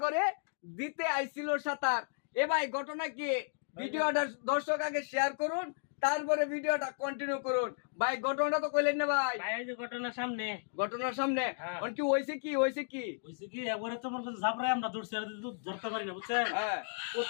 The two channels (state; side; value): silent; right; digital silence